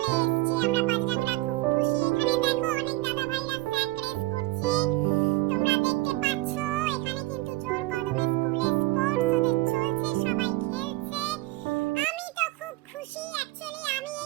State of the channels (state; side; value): quieter; left; 19.1 dB